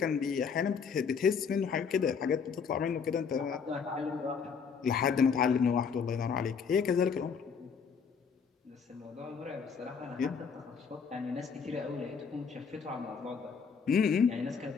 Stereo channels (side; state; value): right; quieter; 6.1 dB